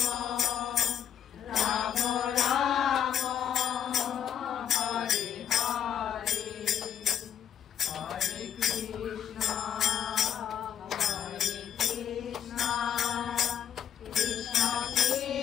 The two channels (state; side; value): quieter; right; 9.1 dB